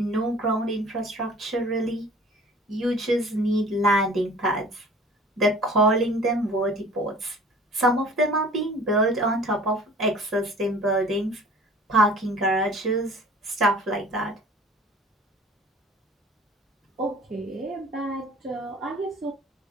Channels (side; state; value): both; normal; correlation 0.47